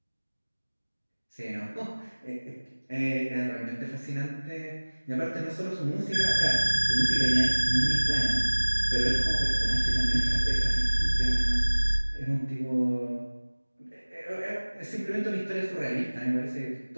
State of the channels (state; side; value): inverted; both; correlation -1.00